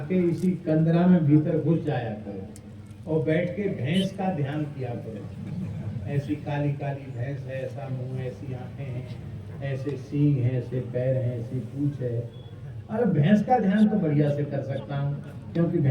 के इसी कंदरा में भीतर घुस जाया करो और बैठ के भैंस का ध्यान किया करो। ऐसी काली काली भैंस है, ऐसा मुंह, ऐसी आंखें हैं, ऐसे सींग हैं, ऐसे पैर हैं, ऐसी पूंछ है। अरे भैंस का ध्यान तो बढ़िया से कर सकता हूँ, क्योंकि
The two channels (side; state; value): both; identical; correlation 1.00